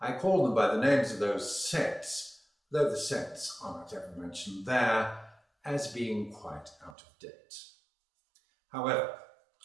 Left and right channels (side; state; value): left; drops out; at 7.0 s